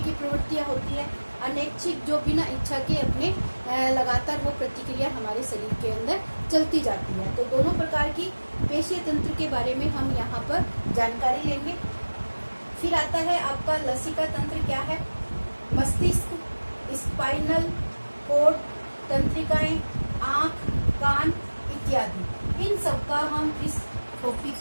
प्रवृत्तियां होती है, अनैच्छिक जो बिना इच्छा के अपने लगातार वो प्रतिक्रिया हमारे शरीर के अंदर चलती जाती है। तो दोनों प्रकार की पेशीय तंत्र के बारे में हम यहाँ पर जानकारी लेंगे। फिर आता है आपका लसिका तंत्र। क्या है? मस्तिष्क, स्पाइनल कोड, तंत्रिकाएं, आंख, कान इत्यादि, इन सब का हम इस टॉपिक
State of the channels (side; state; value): both; inverted; correlation -1.00